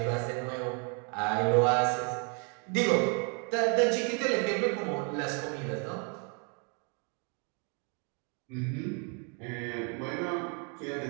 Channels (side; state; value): left; quieter; 37.5 dB